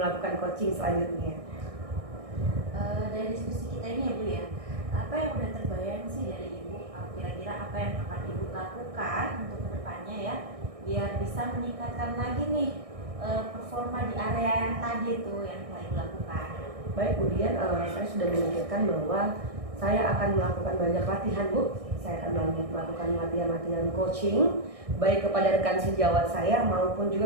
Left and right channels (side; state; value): left; late; 1.6 ms